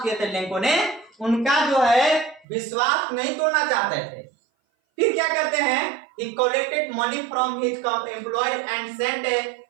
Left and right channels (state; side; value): drops out; left; at 2.5 s